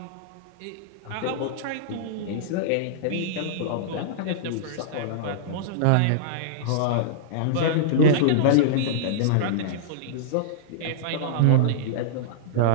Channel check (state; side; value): different; both; correlation -0.02